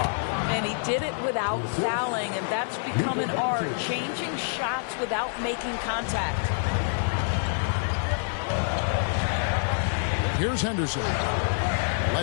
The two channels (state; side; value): silent; right; 57 dB below the other